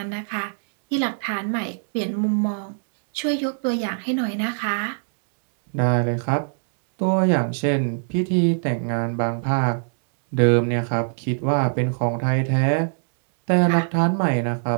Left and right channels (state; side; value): silent; left; digital silence